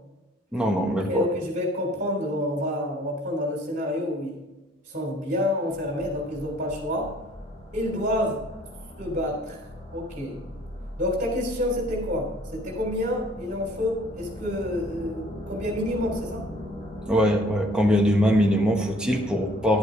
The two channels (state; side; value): normal; both; correlation 0.56